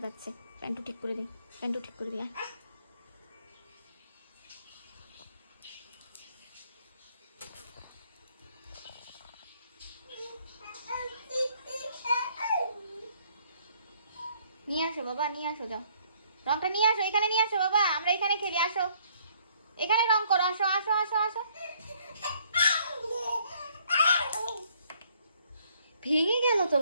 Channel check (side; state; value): both; inverted; correlation -0.64